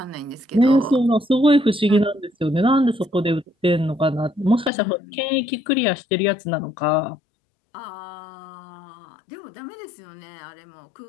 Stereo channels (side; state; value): right; drops out; at 4.7 s